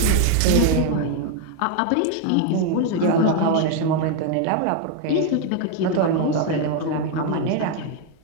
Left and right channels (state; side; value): different; both; correlation 0.01